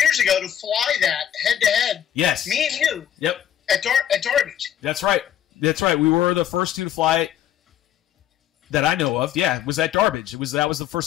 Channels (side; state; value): right; quieter; 10.5 dB